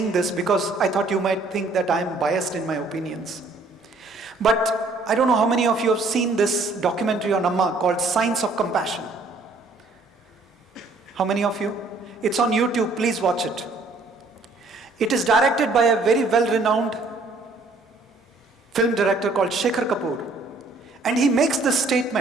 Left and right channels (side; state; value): left; quieter; 3.3 dB